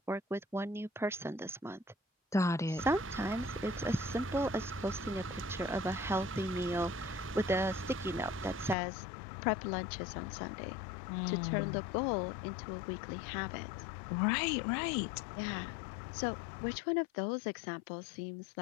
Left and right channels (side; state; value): right; drops out; at 8.8 s